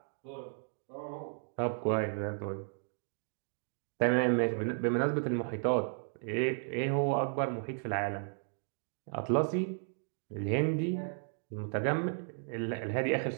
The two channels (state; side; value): silent; left; 55 dB below the other